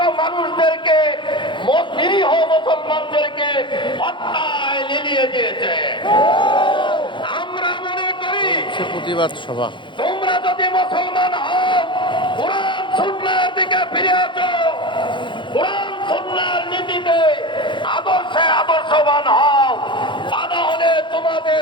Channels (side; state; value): right; late; 0.23 ms